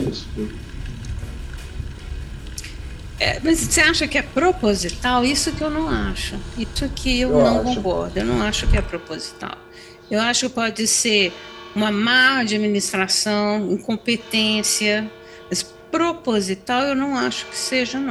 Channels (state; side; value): identical; both; correlation 1.00